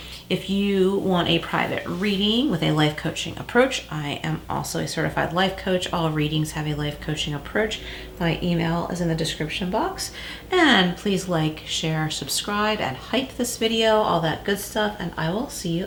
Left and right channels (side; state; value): both; identical; correlation 1.00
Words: If you want a private reading with a life coaching approach, I am also a certified life coach. All readings have a life coaching approach. My email is in the description box. And please like, share, subscribe, and hype this video, all that good stuff. And I will see you